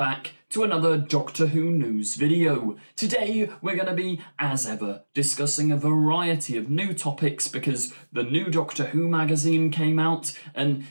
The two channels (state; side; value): inverted; both; correlation -1.00